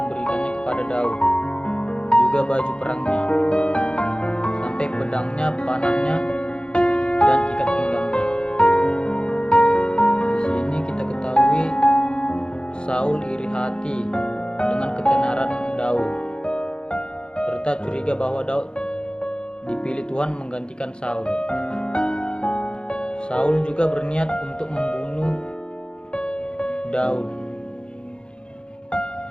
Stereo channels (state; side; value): late; right; 0.051 ms